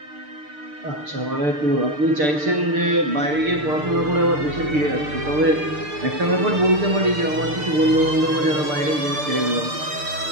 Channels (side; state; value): left; late; 6.7 ms